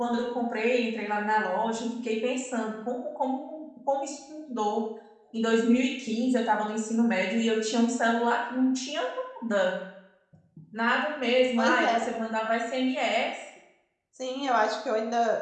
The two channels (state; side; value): identical; both; correlation 1.00